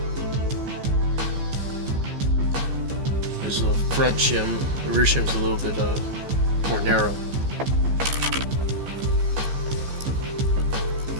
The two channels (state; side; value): late; left; 15 ms